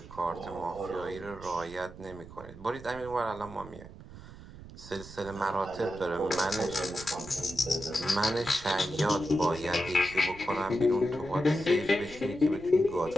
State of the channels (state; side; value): noise; right; rumble, 16 dB below the sound